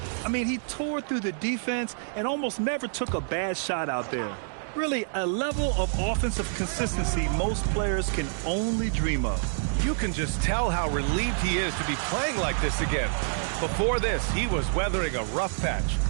I mean, he tore through the defense and almost never took a bad shot out there. Really, a level of offensive consistency most players can only dream of. You can just tell how relieved he is to be playing like this again. Before this, he was weathering a rough patch,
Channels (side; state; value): left; silent; digital silence